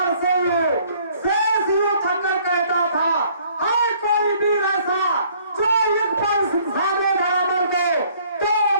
से शेष यूं थककर कहता था, है कोई वीर ऐसा जो एक पल सामने बराबर को, तो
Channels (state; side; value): inverted; both; correlation -0.60